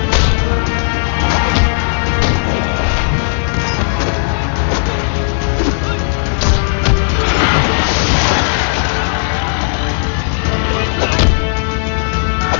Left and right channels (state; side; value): silent; right; digital silence